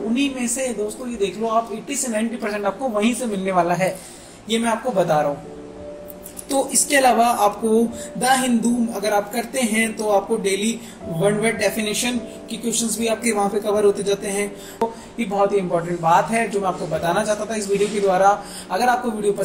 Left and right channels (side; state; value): both; identical; correlation 1.00